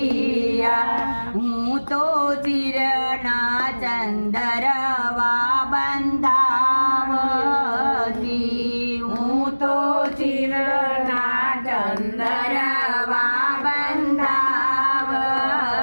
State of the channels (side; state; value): both; inverted; correlation -1.00